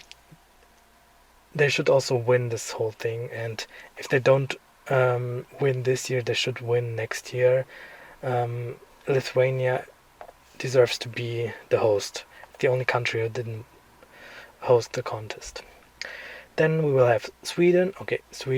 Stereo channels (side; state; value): both; identical; correlation 1.00